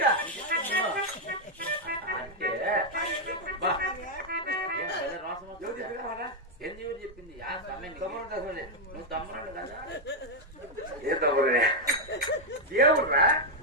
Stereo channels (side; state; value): both; normal; correlation 0.00